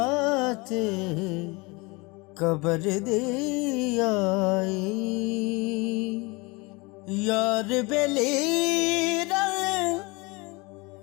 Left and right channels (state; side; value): quieter; right; 26.3 dB